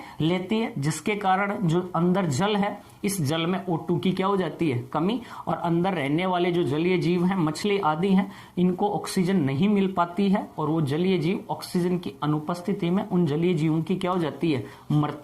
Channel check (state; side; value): identical; both; correlation 1.00